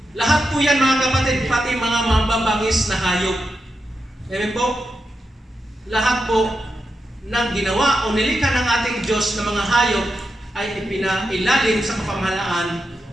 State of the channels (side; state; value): both; normal; correlation 0.87